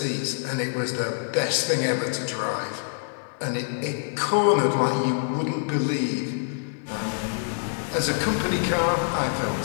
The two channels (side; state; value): right; silent; digital silence